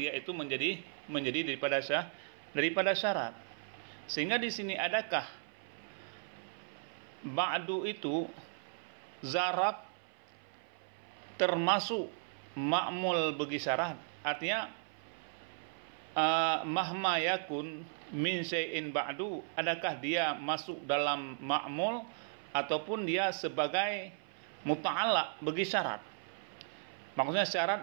itu menjadi daripada syarat. Sehingga di sini adakah ba'du itu zaraf termasuk ma'mul bagi syarat? Artinya mahma yakun min syai'in ba'du, adakah dia masuk dalam ma'mul ataupun dia sebagai muta'allaq bagi syarat? Maksudnya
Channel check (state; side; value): silent; left; 54 dB below the other